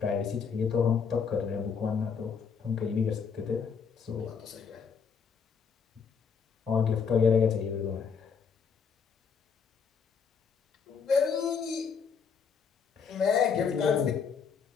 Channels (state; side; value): quieter; right; 6.2 dB